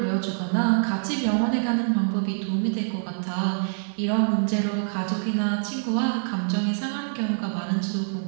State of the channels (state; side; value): silent; left; digital silence